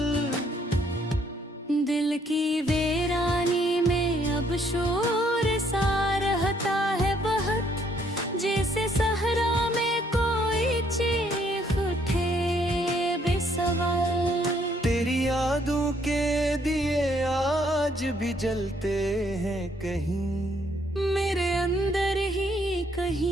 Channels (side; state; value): both; normal; correlation 0.68